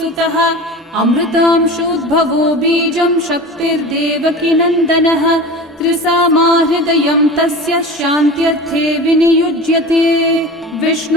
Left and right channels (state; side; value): normal; both; correlation 0.33